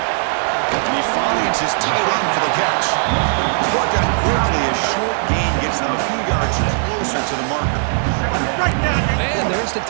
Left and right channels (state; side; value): silent; left; 67 dB below the other